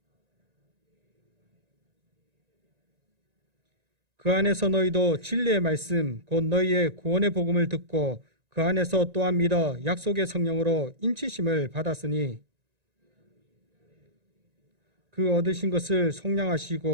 그 안에서 너희도 진리의 말씀 곧 너희의 구원의 복음을 듣고 그 안에서 또한 믿어 약속의 성령으로 인치심을 받았으니 그 얻으신 것을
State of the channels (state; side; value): late; left; 1.9 ms